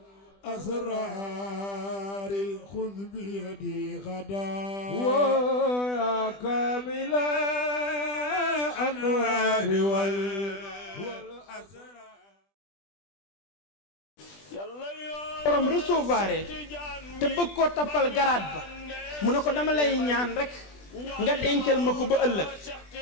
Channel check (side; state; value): right; late; 20 ms